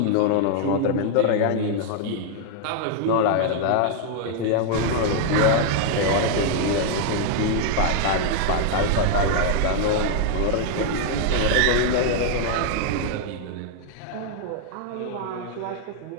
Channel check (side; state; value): both; different; correlation 0.00